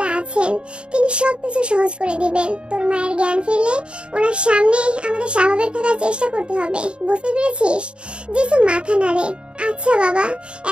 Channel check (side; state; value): left; late; 0.054 ms